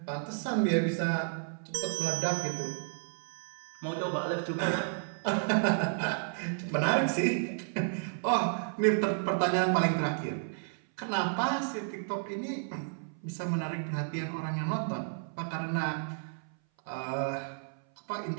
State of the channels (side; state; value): left; silent; 56 dB below the other